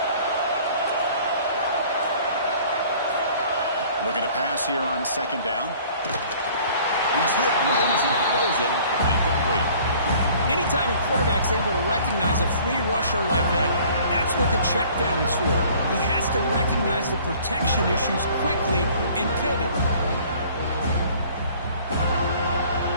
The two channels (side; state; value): both; inverted; correlation -0.52